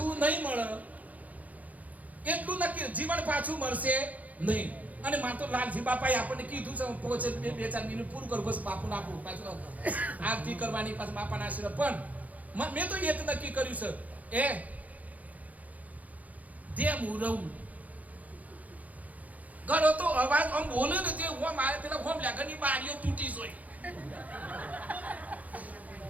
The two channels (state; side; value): late; left; 0.075 ms